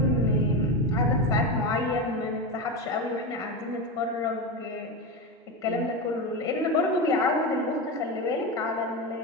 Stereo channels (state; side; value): normal; both; correlation 0.17